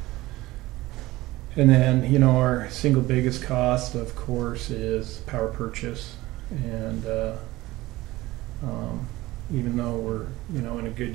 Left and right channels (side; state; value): left; quieter; 18.4 dB